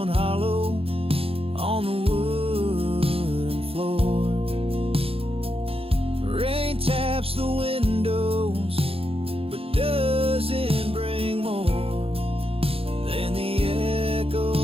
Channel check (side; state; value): left; late; 0.27 ms